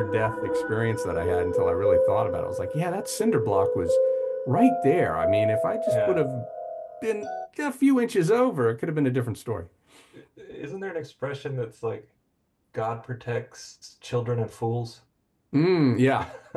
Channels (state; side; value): identical; both; correlation 1.00